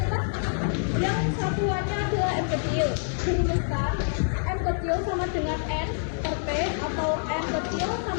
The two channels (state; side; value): silent; right; digital silence